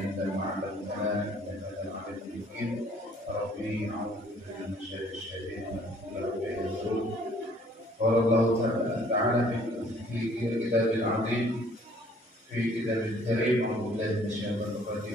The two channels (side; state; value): both; normal; correlation 0.59